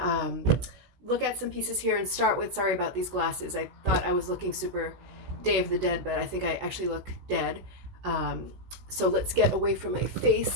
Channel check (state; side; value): late; left; 16 ms